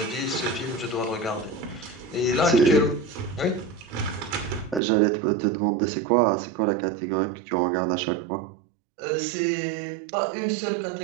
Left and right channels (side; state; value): left; drops out; at 4.8 s